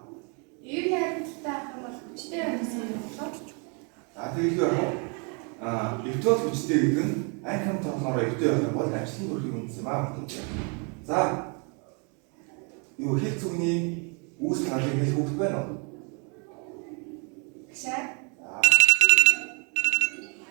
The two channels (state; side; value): quieter; left; 35.5 dB